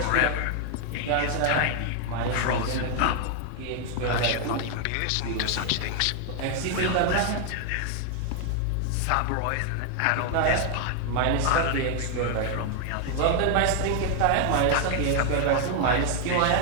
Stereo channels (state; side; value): different; both; correlation 0.00